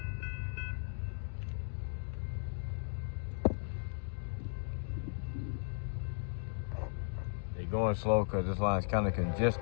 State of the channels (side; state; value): right; silent; digital silence